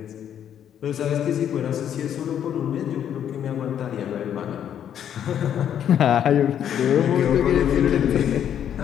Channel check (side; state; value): right; quieter; 9.6 dB